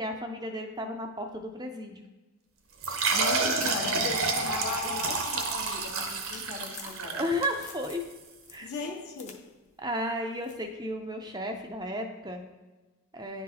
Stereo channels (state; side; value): normal; both; correlation 0.05